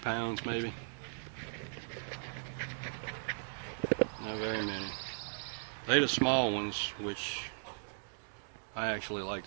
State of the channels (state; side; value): silent; left; digital silence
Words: maybe. Not very many. They're the small ones, which I actually like